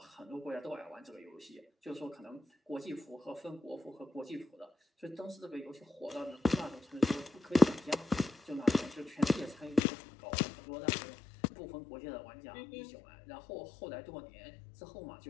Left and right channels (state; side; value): drops out; right; at 9.8 s